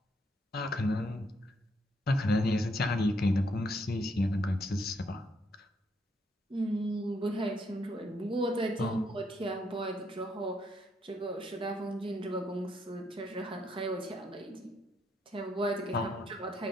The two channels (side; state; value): both; normal; correlation 0.74